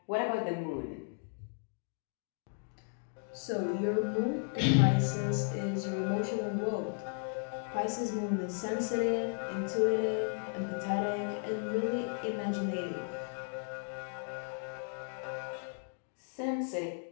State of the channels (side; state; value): right; silent; 54 dB below the other